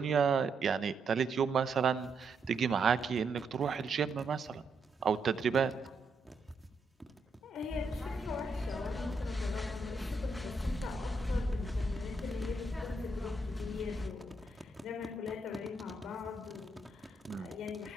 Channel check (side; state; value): left; quieter; 3.1 dB